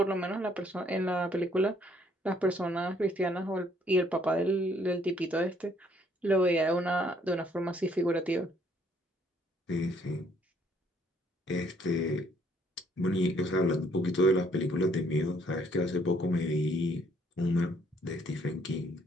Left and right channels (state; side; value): normal; both; correlation 0.65